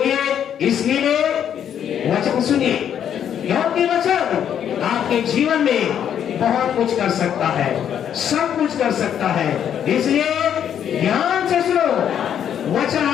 इसलिए वचन सुनिए, क्योंकि वचन आपके जीवन में बहुत कुछ कर सकता है, सब कुछ कर सकता है। इसलिए ध्यान से सुनो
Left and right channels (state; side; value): quieter; right; 9.2 dB